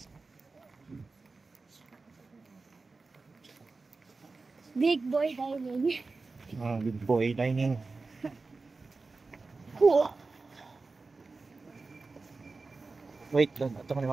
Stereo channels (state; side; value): quieter; left; 3.9 dB